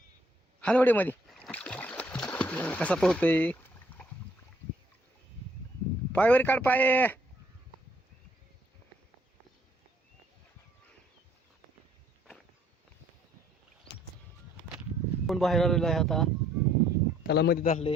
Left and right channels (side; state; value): both; normal; correlation 0.64